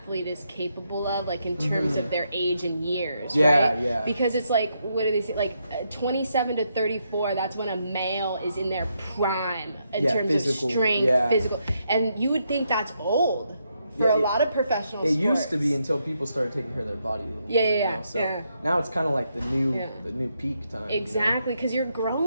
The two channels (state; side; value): inverted; both; correlation -0.79